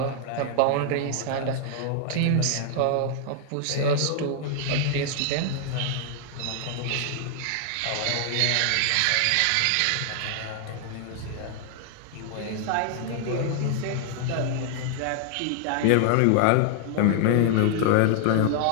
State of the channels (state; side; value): different; both; correlation 0.00